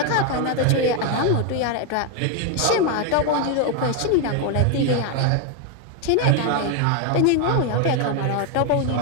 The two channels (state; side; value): different; both; correlation 0.01